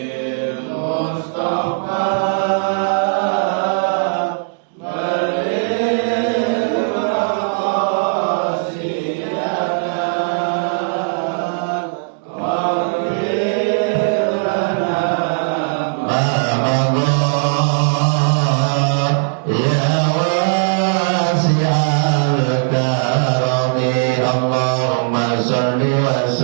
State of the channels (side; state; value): left; silent; digital silence